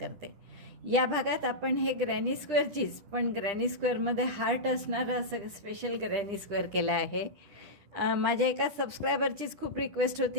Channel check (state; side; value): late; left; 9.9 ms